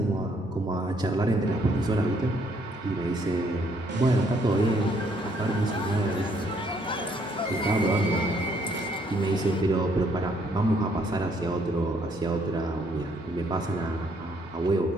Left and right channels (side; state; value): both; normal; correlation 0.68